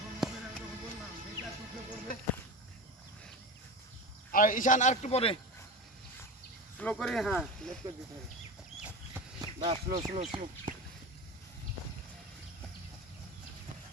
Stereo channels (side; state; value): both; normal; correlation 0.26